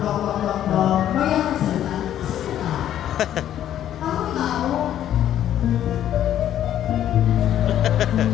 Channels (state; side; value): quieter; right; 11.2 dB